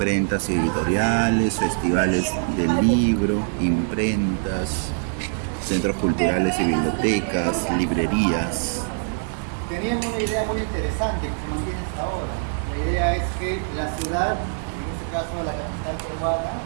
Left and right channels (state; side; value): silent; left; 63 dB below the other